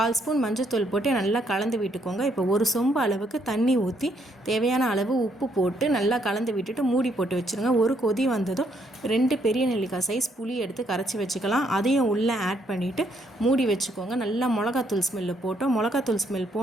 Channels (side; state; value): both; normal; correlation 0.72